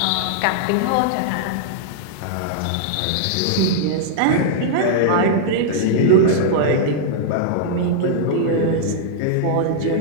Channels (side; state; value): both; different; correlation -0.02